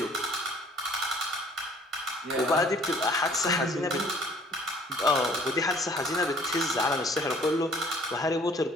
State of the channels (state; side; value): normal; both; correlation 0.56